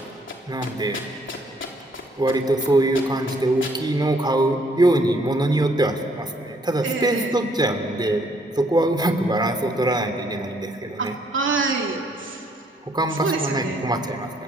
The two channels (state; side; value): normal; both; correlation 0.67